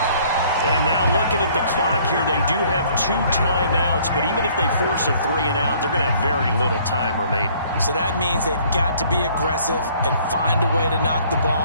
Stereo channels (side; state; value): both; inverted; correlation -0.59